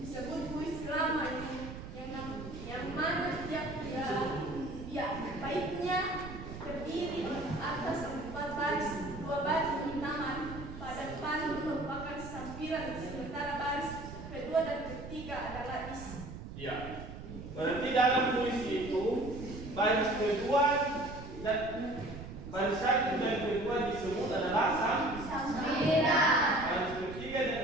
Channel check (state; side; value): noise; right; rumble, 11 dB below the sound